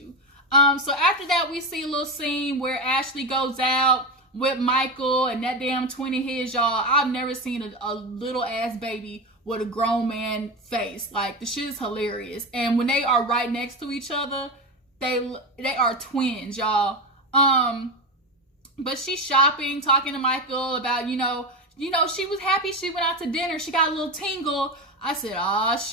So after that, we see a little scene where Ashley goes out with Michael and that damn twin of his, y'all. I've never seen a little ass baby with a grown man face. The shit is hilarious. And when they are right next to each other, they are twins, y'all. But she's shopping, talking to Michael about, she was happy she went out to dinner. She got a little tingle. I said, oh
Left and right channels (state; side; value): normal; both; correlation 0.18